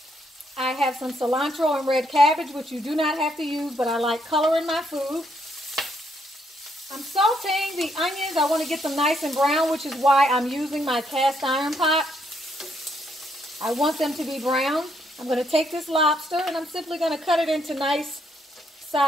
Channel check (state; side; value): normal; both; correlation 0.74